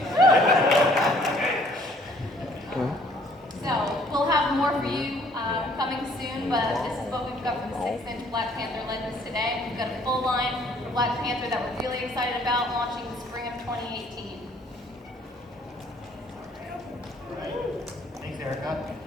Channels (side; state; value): both; normal; correlation 0.60